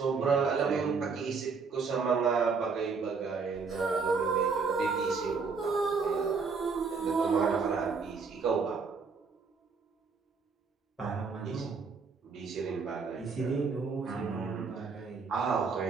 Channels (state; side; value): quieter; left; 5.0 dB